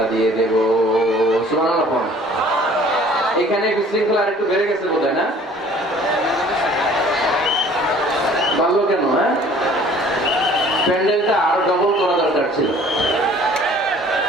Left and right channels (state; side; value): normal; both; correlation 0.53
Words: দিয়ে দেব। সুবহানাল্লাহ। এখানে বিশৃঙ্খলা আরেকটু বেড়ে গেছে বোধহয়, না? পারলো কেন? হ্যাঁ, প্যান্ডেলটা আরো ডবল করা দরকার ছিল।